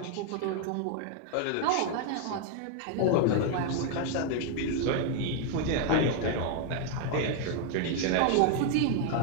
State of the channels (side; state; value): both; different; correlation 0.00